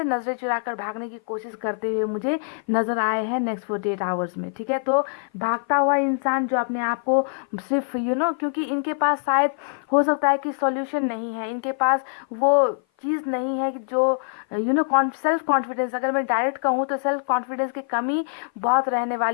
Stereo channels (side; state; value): right; silent; 56 dB below the other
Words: नजरें चुराकर भागने की कोशिश करते हुए मुझे नजर आए हैं नेक्स्ट 48 आवर्स में। ठीक है, तो भागता हुआ इंसान जो अपने आप को सिर्फ क्योंकि इनके पास शायद हो सकता है कि सॉल्यूशन नहीं है, इनके पास वो चीज़ नहीं है कि जो सेल्फ कॉन्फिडेंस, अगर मैं डायरेक्ट कहूँ तो सेल्फ कॉन्फिडेंस की कमी बहुत रहने